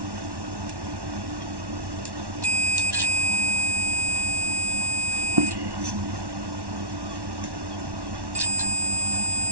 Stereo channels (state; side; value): late; left; 1.1 ms